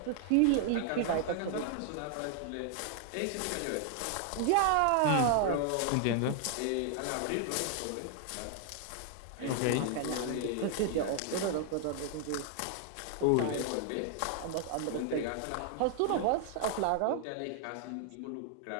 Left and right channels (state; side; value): different; both; correlation 0.00